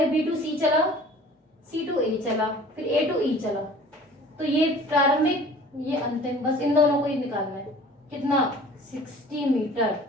B to C चला, C to A चला, फिर A to E चला, तो ये प्रारंभिक, ये अंतिम, बस इन दोनों को ही निकालना है। कितना? 60 मीटर।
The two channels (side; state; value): both; normal; correlation 0.47